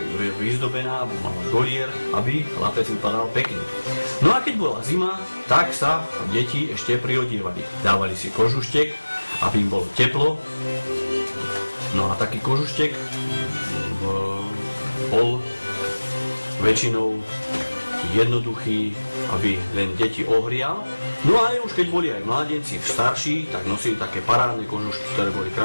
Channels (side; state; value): both; inverted; correlation -1.00